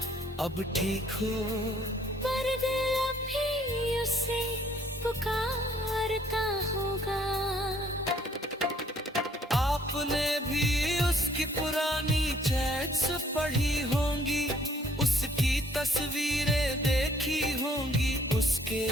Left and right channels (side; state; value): both; normal; correlation 0.62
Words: अब ठीक हो, पर दिल अभी उसे पुकारता होगा। आपने भी उसकी पुरानी चैट्स पढ़ी होंगी, उसकी तस्वीरें देखी होंगी, उसके